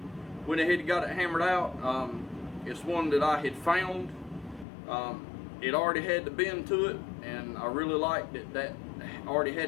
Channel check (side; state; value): right; drops out; at 4.7 s